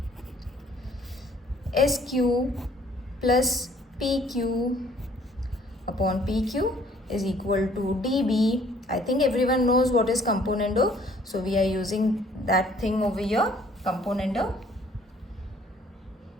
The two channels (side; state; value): both; normal; correlation 0.59